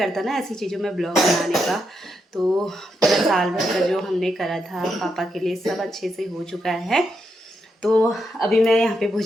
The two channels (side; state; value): both; normal; correlation 0.82